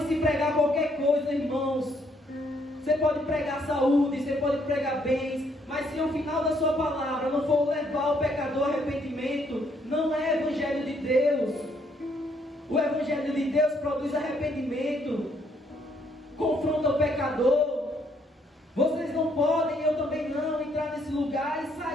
pregar qualquer coisa, irmãos. Você pode pregar saúde, você pode pregar bens, mas se ao final da sua palavra não for levar o pecador ao arrependimento, não é Evangelho de Deus. O Evangelho de Deus produz arrependimento, confronta o pecador. Vocês não podem, eu também não, entrar nesse lugar e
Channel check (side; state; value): both; normal; correlation 0.70